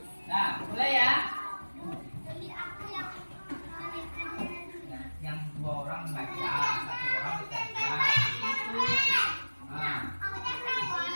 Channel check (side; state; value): both; inverted; correlation -1.00